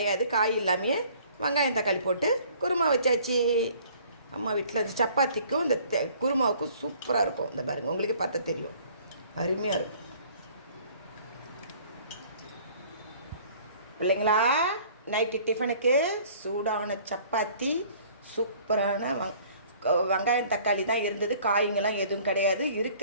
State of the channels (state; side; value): inverted; both; correlation -0.54